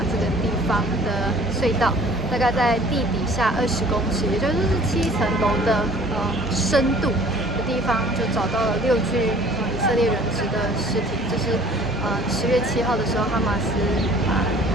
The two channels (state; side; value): normal; both; correlation 0.52